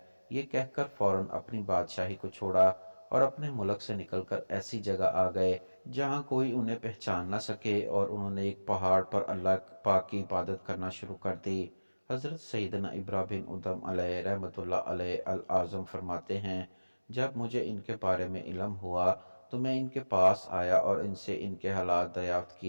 یہ کہہ کر فوراً اپنی بادشاہی کو چھوڑا اور اپنے ملک سے نکل کر ایسی جگہ آ گئے جہاں کوئی انہیں پہچان نہ سکے، اور انہوں نے ایک پہاڑ پر اللہ پاک کی عبادت کرنا شروع کر دی۔ حضرت سیدنا ابراہ بن ادم علیہ رحمۃ اللہ علیہ العظم فرماتے ہیں، جب مجھے ان کے بارے میں علم ہوا تو میں ان کے پاس آیا اور ان سے ان کے حالات دریافت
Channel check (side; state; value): both; inverted; correlation -1.00